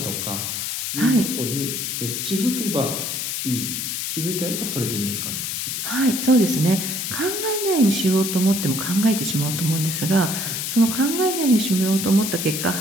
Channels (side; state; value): left; noise; hiss, 3 dB below the sound